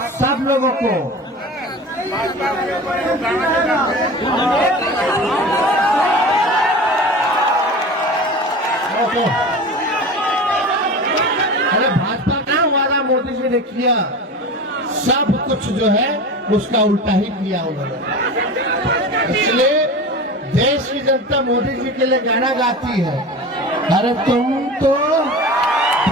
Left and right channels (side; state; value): both; normal; correlation 0.32